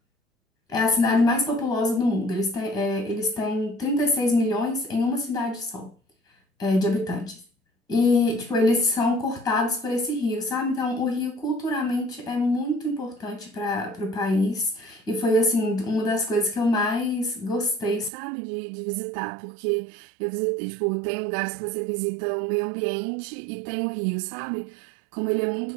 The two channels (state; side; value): drops out; left; at 18.1 s